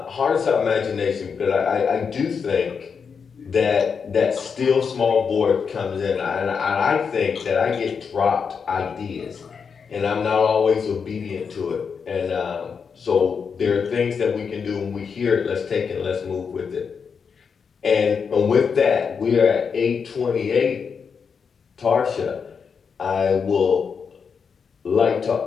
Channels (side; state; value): right; quieter; 6.1 dB